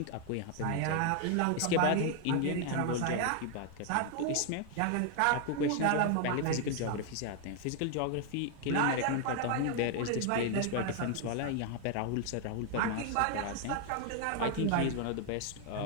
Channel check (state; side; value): different; both; correlation 0.00